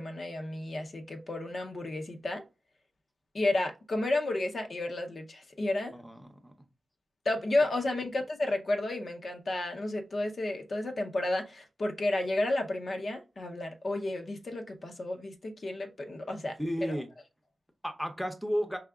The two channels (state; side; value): normal; both; correlation 0.95